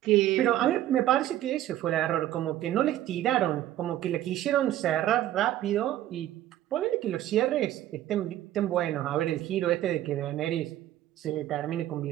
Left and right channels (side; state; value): left; quieter; 13.3 dB